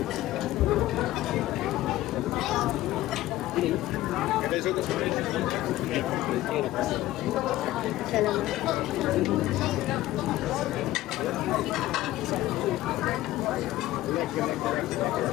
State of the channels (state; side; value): quieter; right; 15.7 dB